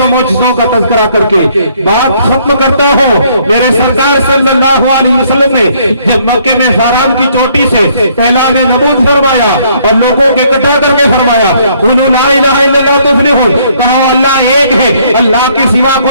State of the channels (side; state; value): both; inverted; correlation -0.65